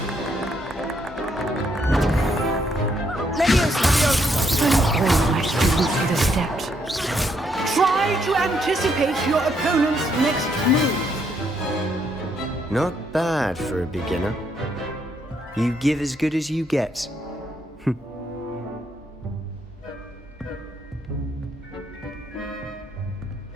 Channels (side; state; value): both; normal; correlation 0.74